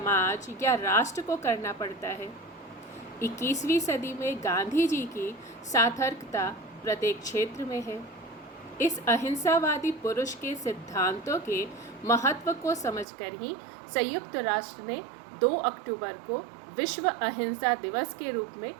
या राष्ट्र को करना पड़ता है। 21वीं सदी में गांधी जी की सार्थकता प्रत्येक क्षेत्र में है। इस अहिंसावादी पुरुष के सिद्धांतों के महत्व को समझकर ही संयुक्त राष्ट्र ने 2 अक्टूबर को विश्व अहिंसा दिवस के रूप में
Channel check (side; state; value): left; drops out; at 13.1 s